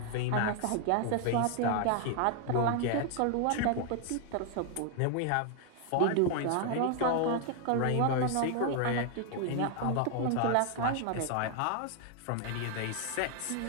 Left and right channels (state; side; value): different; both; correlation 0.00